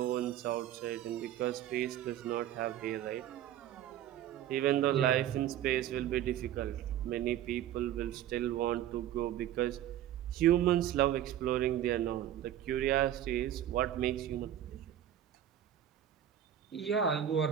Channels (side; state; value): left; quieter; 11.3 dB